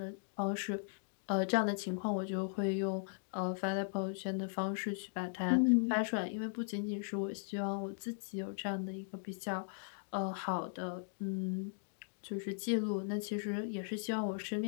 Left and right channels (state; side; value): silent; right; digital silence